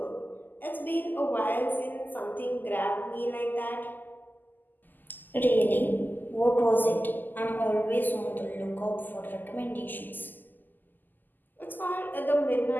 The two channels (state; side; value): late; right; 0.088 ms